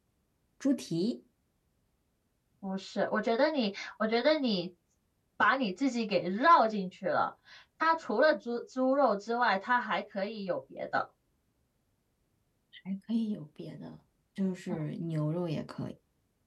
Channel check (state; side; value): identical; both; correlation 1.00